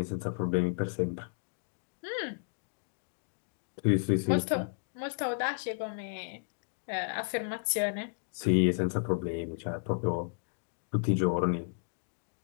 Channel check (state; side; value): silent; right; digital silence